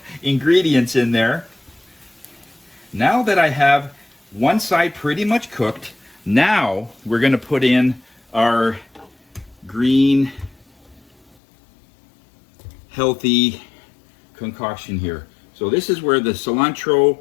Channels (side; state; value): right; drops out; at 11.4 s